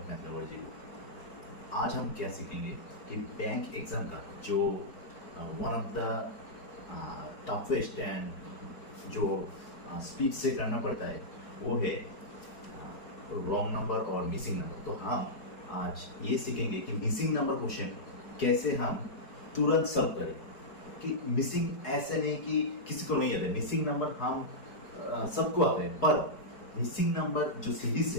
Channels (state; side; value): late; right; 4.7 ms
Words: math lover ji. आज हम क्या सीखेंगे कि बैंक एग्ज़ाम का जो one of the toughest and जो स्पीड से करना पड़ता है वो है रॉन्ग नंबर और मिसिंग नंबर। तो हम आज ये सीखेंगे कि मिसिंग नंबर क्वेश्चन कैसे हम तुरंत सॉल्व करें। कि मिसिंग ऐसे नहीं कि किसी को नहीं आता है, मिसिंग नंबर हम सबको आता है, पर मिसिंग नंबर जो सीरीज